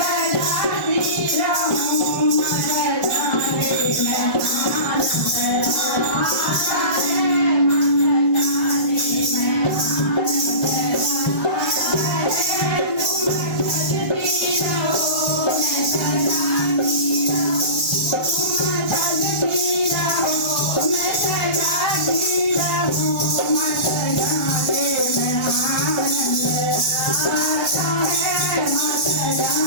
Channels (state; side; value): late; right; 1.2 ms